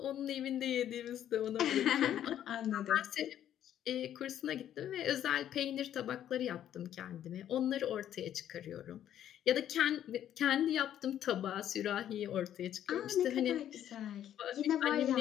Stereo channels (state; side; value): quieter; right; 10.8 dB